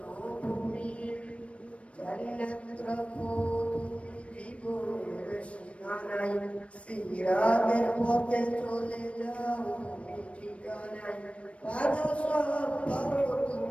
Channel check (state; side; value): late; right; 0.062 ms